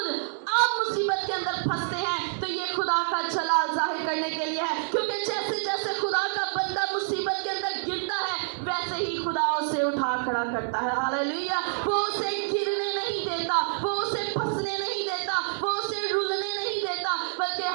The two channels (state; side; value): silent; left; digital silence